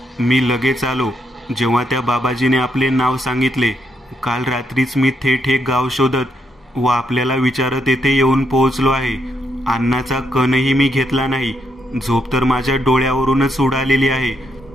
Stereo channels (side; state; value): both; normal; correlation 0.78